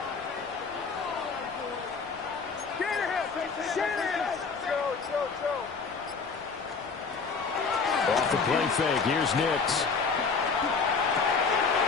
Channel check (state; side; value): quieter; right; 5.0 dB